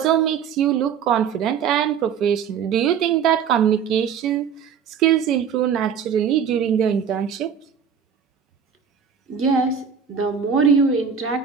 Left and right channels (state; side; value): quieter; left; 7.3 dB